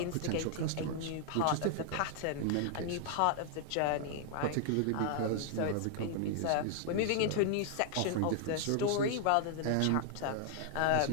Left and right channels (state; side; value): different; both; correlation 0.00